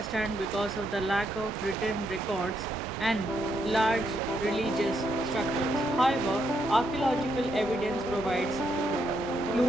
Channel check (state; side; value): normal; both; correlation 0.77